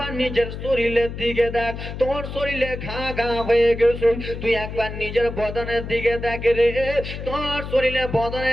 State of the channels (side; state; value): left; noise; hum, 8 dB below the sound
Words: নিজের শরীরের দিকে দেখ, তোর শরীরে ঘা ঘা হয়ে গেছে। তুই একবার নিজের বদনের দিকে দেখ রে, তোর শরীরে